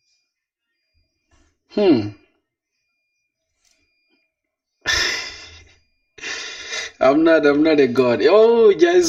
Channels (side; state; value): both; identical; correlation 1.00